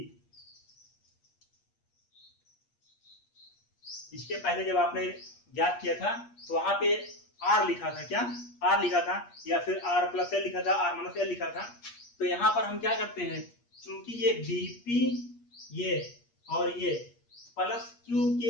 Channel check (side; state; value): right; late; 8.5 ms